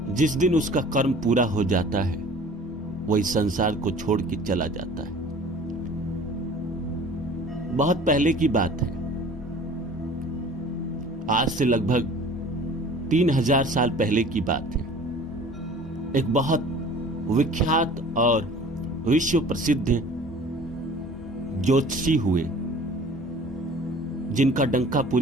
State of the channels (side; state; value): both; normal; correlation 0.46